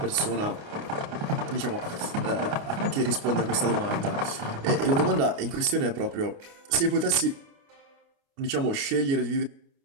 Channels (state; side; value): late; left; 29 ms